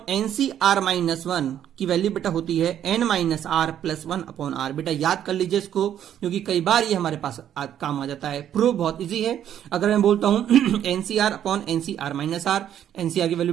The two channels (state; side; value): quieter; left; 10.3 dB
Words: NCR माइनस 1 की वैल्यू बेटा होती है n minus r plus 1 upon r. बेटा याद कर लीजिए इसको क्योंकि कई बार ये हमारे पास काम आ जाता है। प्रूफ बहुत इजी है। अगर मैं बोलता हूं NCR upon NCR minus r, NCR की